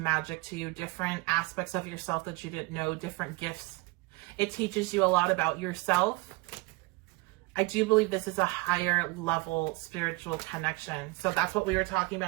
to you, different aspects of yourself that you didn't know, different gifts. It teaches you a lot about yourself. I do believe this is a higher level spiritual connection. So that's what we were talking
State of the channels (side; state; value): left; quieter; 23.7 dB